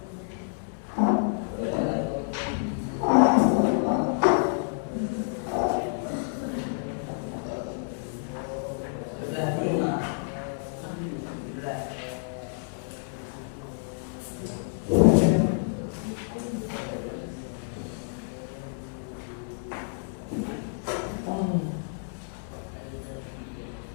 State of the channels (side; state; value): right; silent; digital silence